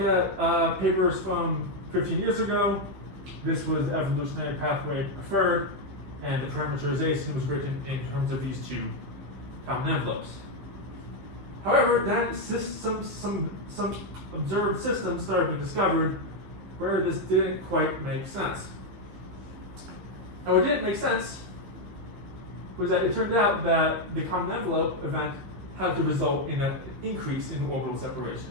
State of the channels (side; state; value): left; late; 15 ms